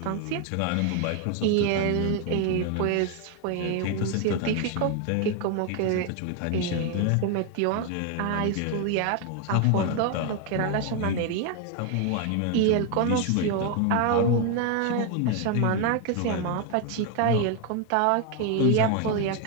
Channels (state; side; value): different; both; correlation 0.01